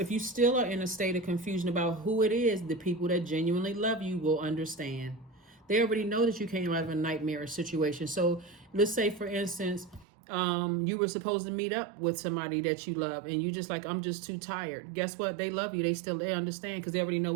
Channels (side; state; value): left; drops out; at 10.1 s